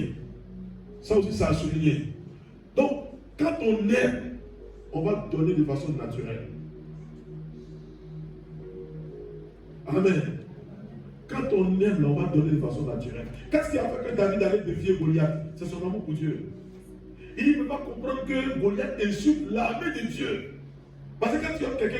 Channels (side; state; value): both; identical; correlation 1.00